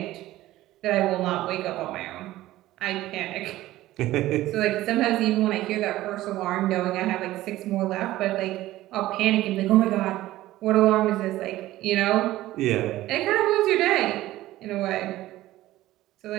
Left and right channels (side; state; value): left; quieter; 15.8 dB